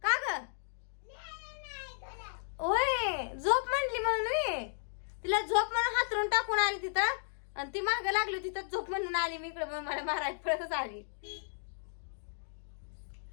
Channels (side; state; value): right; silent; digital silence